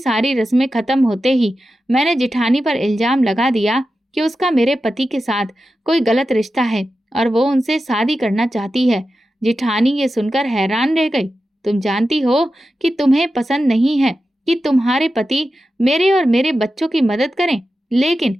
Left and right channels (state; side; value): normal; both; correlation 0.92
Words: रस्में खत्म होते ही मैंने जेठानी पर इल्ज़ाम लगा दिया कि उसका मेरे पति के साथ कोई गलत रिश्ता है और वो उनसे शादी करना चाहती है। जेठानी ये सुनकर हैरान रह गई। तुम जानती हो कि तुम्हें पसंद नहीं है कि तुम्हारे पति मेरे और मेरे बच्चों की मदद करें, लेकिन